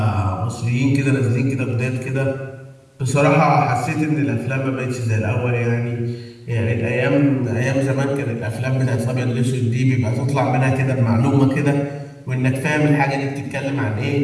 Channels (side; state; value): both; identical; correlation 1.00